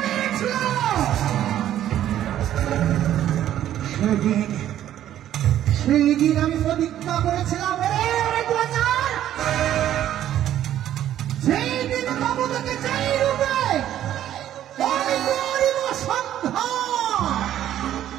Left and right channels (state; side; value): quieter; left; 11.7 dB